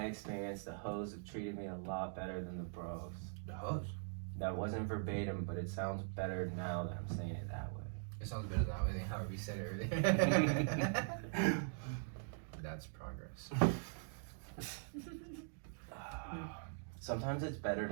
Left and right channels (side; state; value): left; silent; digital silence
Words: experience, the hoes have treated me a lot better than the bros. The hoes. That wasn't verbatim, but it sounds better now that I'm saying it that way. It sounds better that way than how we said it earlier. That's progress. Sometimes it's better